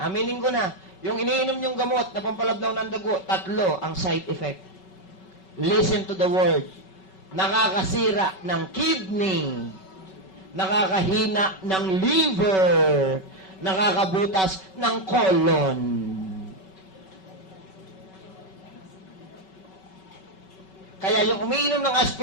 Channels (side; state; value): right; late; 5.3 ms